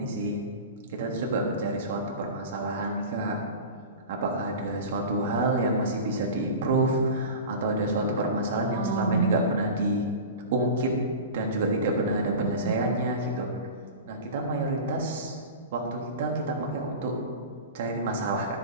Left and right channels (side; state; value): both; inverted; correlation -0.31